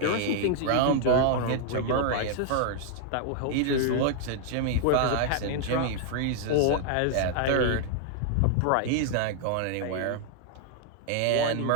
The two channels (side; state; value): both; different; correlation 0.00